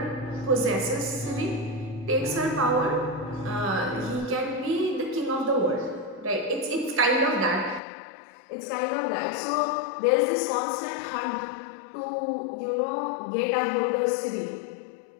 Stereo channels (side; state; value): right; drops out; at 7.8 s